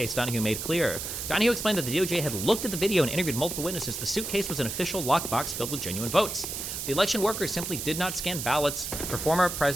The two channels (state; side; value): noise; right; hiss, 5 dB below the sound